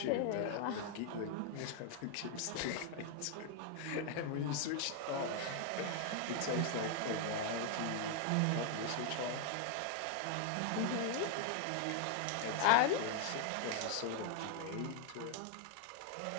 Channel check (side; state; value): both; different; correlation 0.00